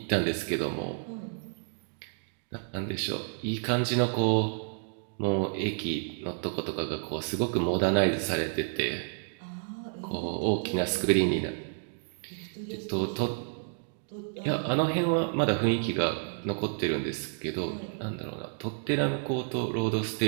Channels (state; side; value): silent; left; digital silence